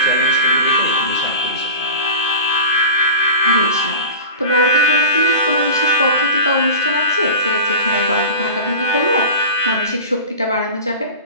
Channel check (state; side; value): inverted; both; correlation -0.34